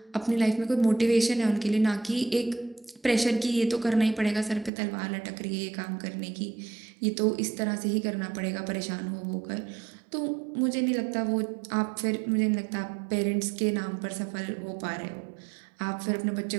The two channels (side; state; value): left; drops out; at 4.7 s